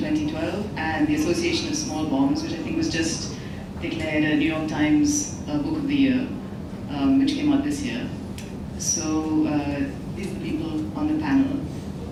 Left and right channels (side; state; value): both; identical; correlation 1.00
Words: and The Association of Small Bombs, which I think was just declared a New York Times Book of the Year, which came out this year. So these are the people on the panel.